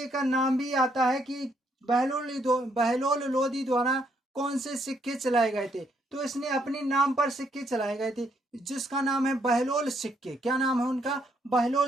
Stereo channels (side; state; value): both; normal; correlation 0.72